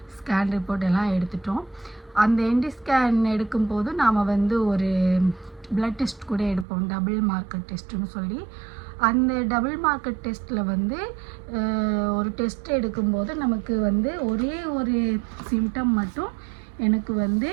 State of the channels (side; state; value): left; drops out; at 6.7 s